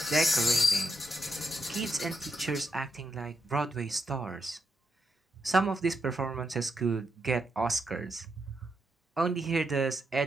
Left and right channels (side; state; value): both; normal; correlation 0.82